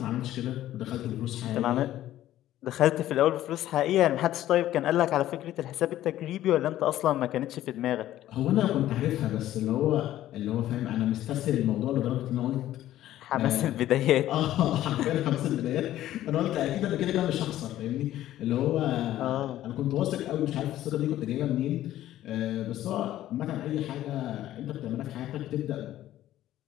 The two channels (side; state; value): right; quieter; 13.5 dB